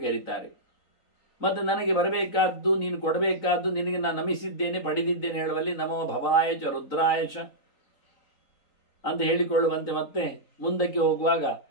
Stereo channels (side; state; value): right; late; 3.8 ms